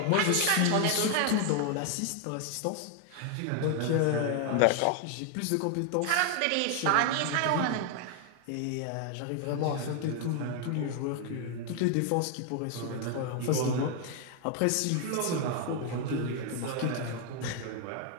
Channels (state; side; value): different; both; correlation 0.00